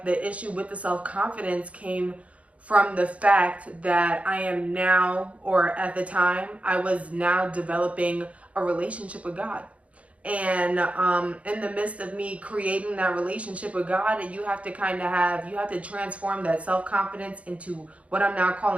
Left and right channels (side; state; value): left; late; 0.064 ms